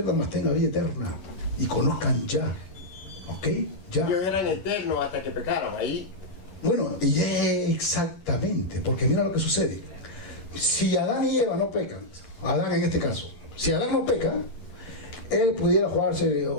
más tengan vida eterna y conozcan ya. ¿Ok? Ya. Ellos eran eternos hasta que pecaron, ahí Bueno, y exactamente, porque mira lo que sucede. Si Adán y Eva no pecan, Adán en este caso, si Adán no peca, él pudiera jugarse,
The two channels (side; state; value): right; late; 10 ms